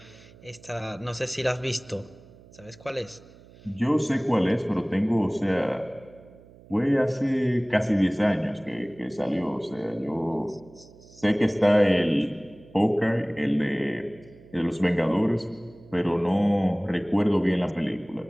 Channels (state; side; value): noise; right; hum, 23 dB below the sound